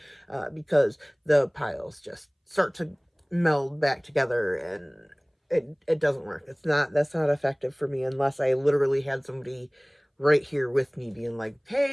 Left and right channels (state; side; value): identical; both; correlation 1.00